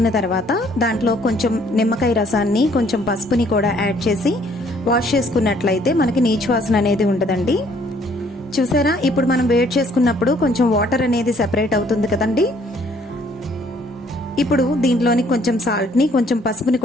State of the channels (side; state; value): both; normal; correlation 0.62